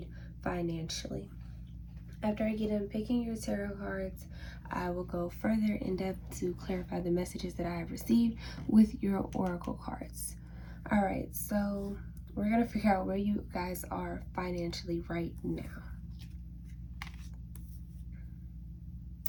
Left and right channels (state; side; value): identical; both; correlation 1.00